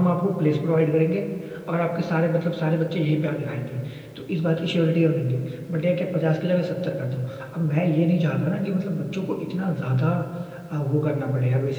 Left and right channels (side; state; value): both; identical; correlation 1.00